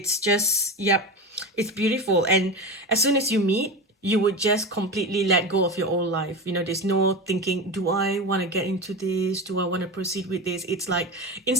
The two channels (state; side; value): normal; both; correlation 0.22